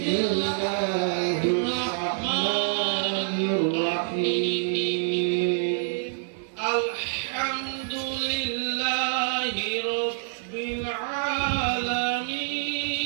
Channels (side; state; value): left; silent; digital silence